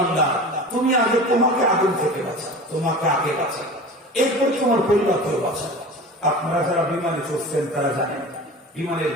তুমি আগে তোমাকে আগুন থেকে বাঁচাও, তোমাকে আগে বাঁচাও, এরপর তোমার পরিবারকেও বাঁচাও। আপনারা যারা বিমানে চড়ছেন তারা জানেন, বিমানের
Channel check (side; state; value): both; normal; correlation 0.36